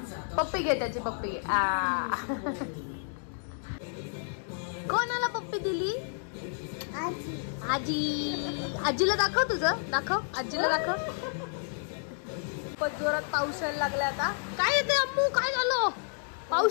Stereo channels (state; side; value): silent; right; digital silence